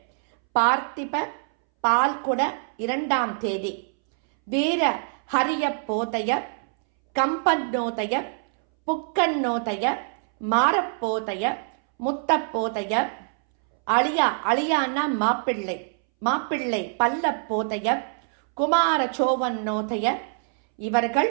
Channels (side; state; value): left; silent; 62 dB below the other